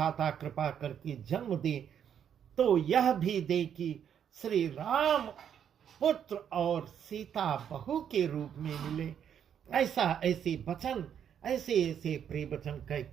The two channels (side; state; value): left; quieter; 8.7 dB